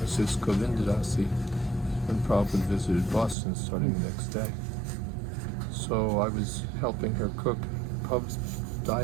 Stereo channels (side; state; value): left; drops out; at 3.4 s